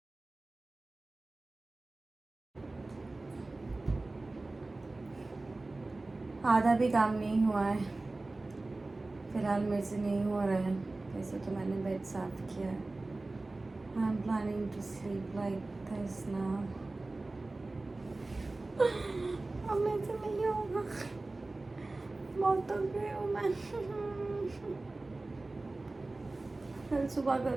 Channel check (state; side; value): quieter; left; 3.1 dB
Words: आधा भी काम नहीं हुआ है फिलहाल, मेरे से नहीं हो रहा है। वैसे तो मैंने बेड साफ किया है। I am planning to sleep like this now. अब मेरे से नहीं होगा, बहुत थक गई हूँ मैं। कल सुबह